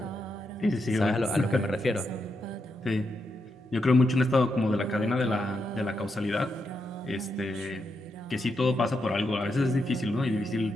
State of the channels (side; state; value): both; normal; correlation 0.83